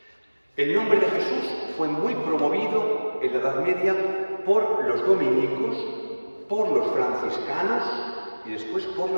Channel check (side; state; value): both; inverted; correlation -1.00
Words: El nombre de Jesús fue muy promovido en la Edad Media por los dominicos, por los franciscanos y después por